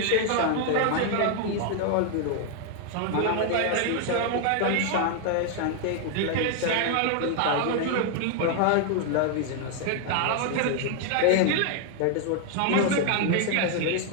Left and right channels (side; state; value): both; different; correlation 0.00